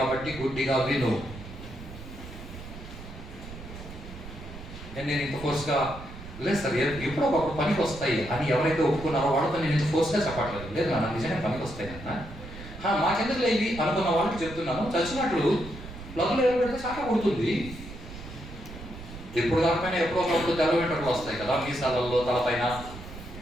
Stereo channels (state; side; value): noise; right; rumble, 13 dB below the sound